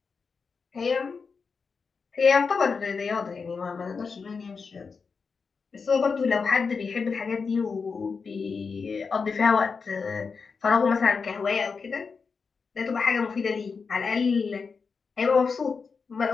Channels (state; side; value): quieter; right; 5.2 dB